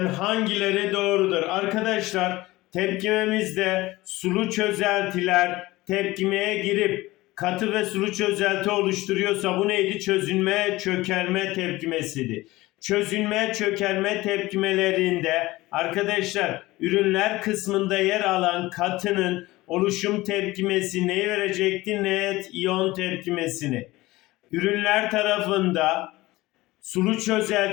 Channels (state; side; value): quieter; right; 19.2 dB